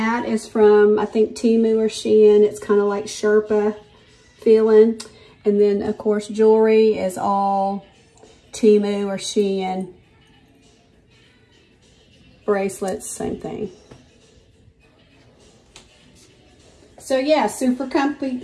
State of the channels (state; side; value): identical; both; correlation 1.00